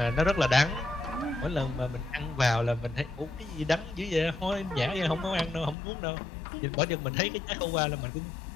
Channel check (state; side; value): drops out; right; at 5.8 s